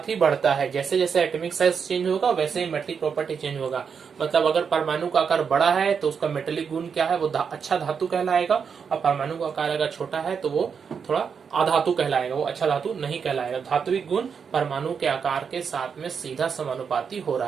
ही बढ़ता है। जैसे जैसे एटॉमिक साइज चेंज होगा वैसे ही मेटेलिक प्रॉपर्टी चेंज होगा। मतलब अगर परमाणु का आकार बड़ा है तो उसका मेटेलिक गुण क्या है, वो अच्छा धातु कहलाएगा, और परमाणु का आकार अगर छोटा है तो वो थोड़ा अधातु कहलाएगा, वो अच्छा धातु नहीं कहलाएगा। धात्विक गुण परमाणु के आकार के साथ में सीधा समानुपाती हो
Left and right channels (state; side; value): quieter; left; 6.4 dB